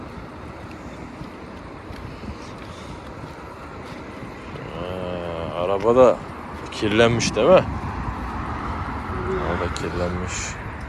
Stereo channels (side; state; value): both; identical; correlation 1.00